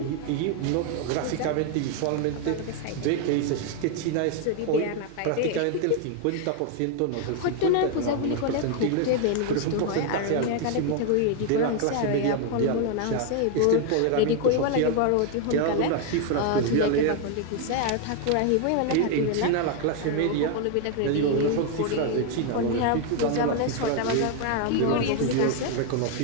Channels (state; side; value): different; both; correlation 0.01